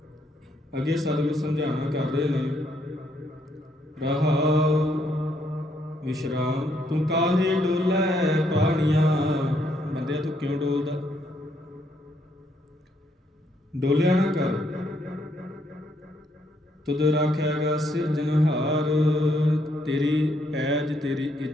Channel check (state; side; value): normal; both; correlation 0.73